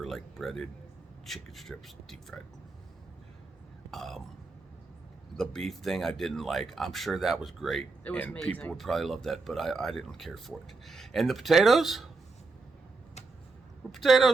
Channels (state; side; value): quieter; left; 3.8 dB